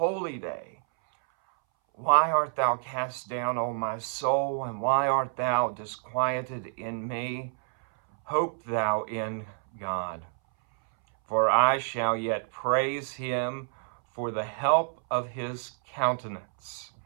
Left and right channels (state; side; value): silent; left; 59 dB below the other